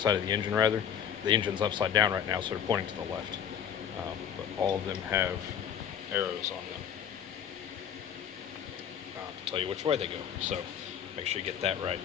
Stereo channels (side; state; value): right; quieter; 8.8 dB